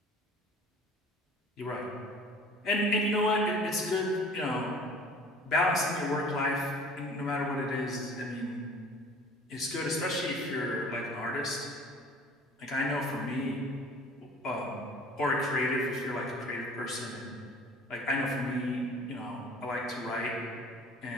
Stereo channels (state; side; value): normal; both; correlation 0.47